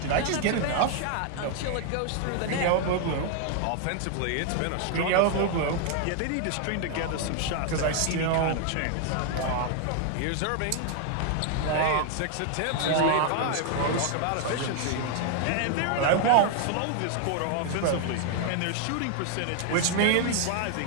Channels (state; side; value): different; both; correlation 0.00